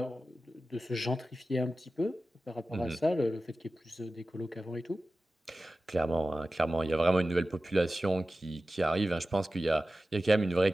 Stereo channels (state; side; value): normal; both; correlation 0.95